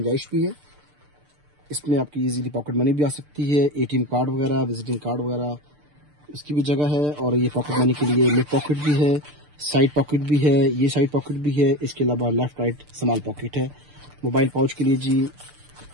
भी है, इसमें आपकी इजीली पॉकेट मनी भी आ सकती है, एटीएम कार्ड वगैरह, विजिटिंग कार्ड वगैरह, इसकी भी जगह है। और ये पॉकेट मनी के लिए मिड पॉकेट भी है, साइड पॉकेट भी है, ये साइड पॉकेट भी है, इसके अलावा लेफ्ट राइट स्मॉल पॉकेट है। मोबाइल पाउच के लिए जी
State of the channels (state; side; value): late; left; 6.8 ms